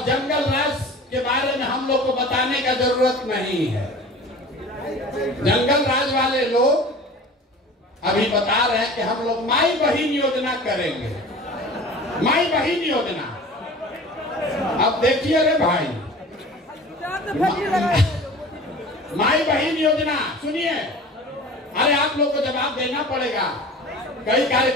जंगल राज के बारे में हम लोग को बताने का जरूरत नहीं है। जंगल राज वाले लोग अभी बता रहे हैं कि हम लोग माई बहिन योजना करेंगे, माई बहिन योजना। अब देखिए रे भाई, माई बहिन योजना सुनिए, अरे आप लोग को जवाब देना पड़ेगा। कई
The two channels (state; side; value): normal; both; correlation 0.40